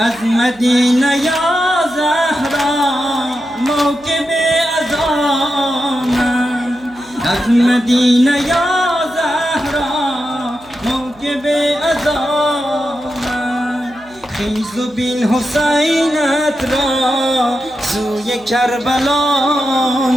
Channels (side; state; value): right; noise; hum, 27 dB below the sound